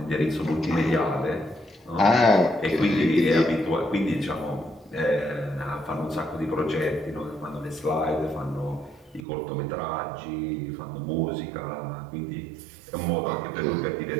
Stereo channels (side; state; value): left; drops out; at 9.2 s